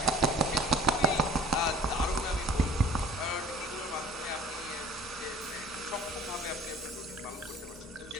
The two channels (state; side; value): normal; both; correlation 0.48